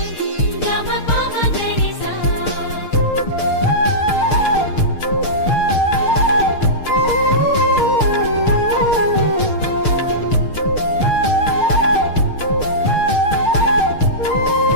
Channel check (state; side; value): late; right; 6.6 ms